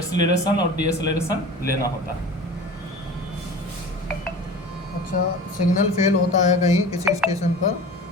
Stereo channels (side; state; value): both; normal; correlation 0.37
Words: और डीएक्सीलरेशन लेना होता है। अच्छा, सिग्नल फेल होता है कहीं किसी स्टेशन पर,